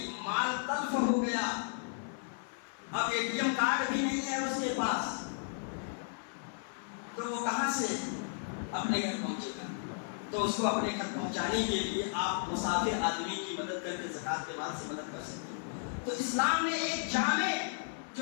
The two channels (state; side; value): silent; right; 55 dB below the other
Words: مال تلف ہو گیا، اب ATM کارڈ بھی نہیں ہے اس کے پاس، تو وہ کہاں سے اپنے گھر پہنچے گا؟ تو اس کو اپنے گھر پہنچانے کے لیے آپ مسافر آدمی کی مدد کر کے زکات کے بعد سے مدد کر سکتے ہیں. تو اسلام نے ایک جامع